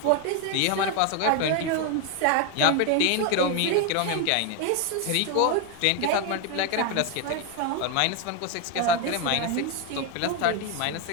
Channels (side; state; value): both; different; correlation 0.01